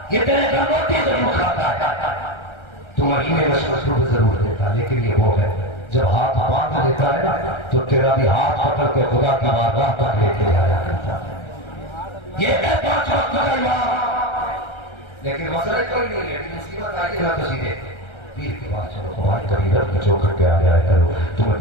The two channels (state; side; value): late; right; 1.3 ms